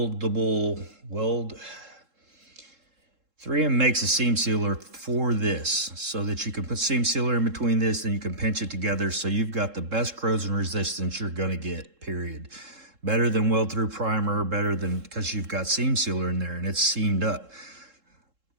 weld. 3M makes a seam sealer for this so that you can put seam sealer in between this, and you can pinch it together, so you've got the best corrosion resistance you're gonna get, period. Better than weld through primer, better than, because you've got seam sealer in there and it's seamed up.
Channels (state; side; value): late; left; 3.7 ms